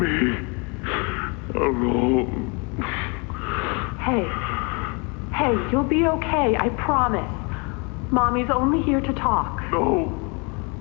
alone. Hey, you'll be okay, I promise. Mommy's only here to talk. No,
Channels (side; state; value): right; quieter; 31.8 dB